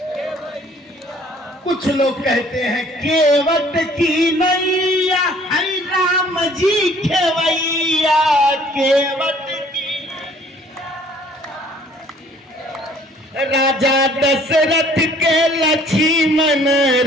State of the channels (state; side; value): normal; both; correlation 0.57